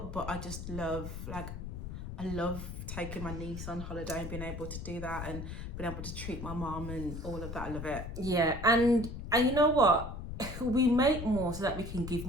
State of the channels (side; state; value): left; noise; rumble, 7 dB below the sound